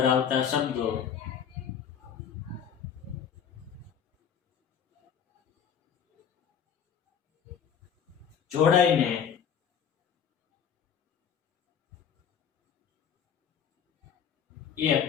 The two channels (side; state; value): right; quieter; 7.9 dB